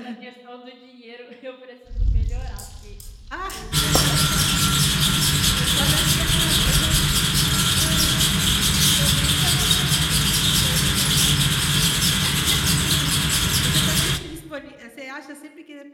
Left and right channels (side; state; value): both; identical; correlation 1.00